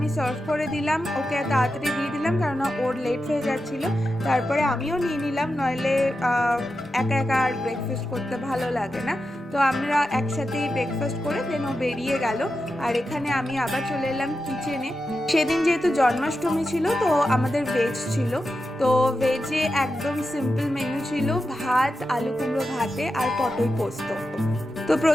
সার্ভ করে দিলাম, ওকে তাড়াতাড়ি দিয়ে দিলাম কারণ ওর লেট হয়ে যাচ্ছিল। তারপরে আমিও নিয়ে নিলাম, নইলে একা একা আর ব্রেকফাস্ট করতে ভালো লাগে না। তো আমরা একসাথেই ব্রেকফাস্ট করে দেন ও বেরিয়ে গেল। আর এখানে আমি আবার চলে এলাম কিচেনে। সেদিন যেহেতু জন্মাষ্টমী ছিল, তো আমাদের ভেজ ছিল। তো ভেজে একদম সিম্পল মেনু ছিল, ভাত, আলু কুমড়ো ভাতে আর পটল পোস্ত। তো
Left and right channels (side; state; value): both; normal; correlation 0.90